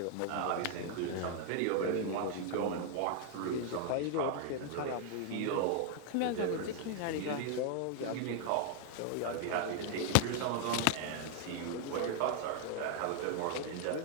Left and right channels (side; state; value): both; different; correlation 0.00